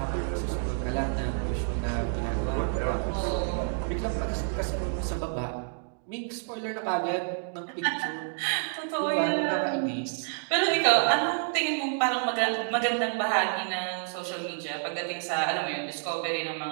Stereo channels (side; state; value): left; silent; 59 dB below the other